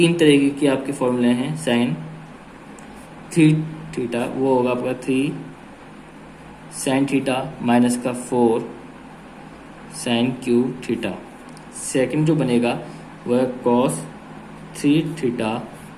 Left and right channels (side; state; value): both; identical; correlation 1.00